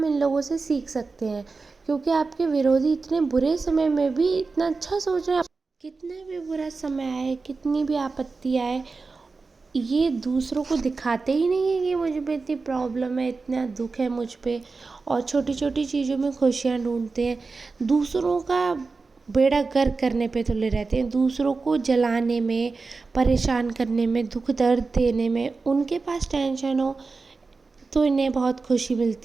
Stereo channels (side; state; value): left; quieter; 4.1 dB